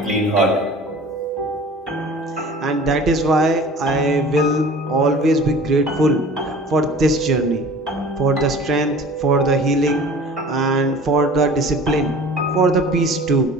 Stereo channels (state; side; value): normal; both; correlation 0.44